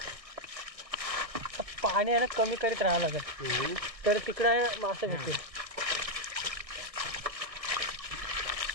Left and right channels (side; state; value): left; late; 1.6 ms